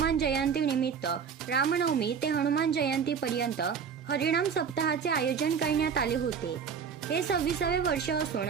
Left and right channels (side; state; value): left; quieter; 6.7 dB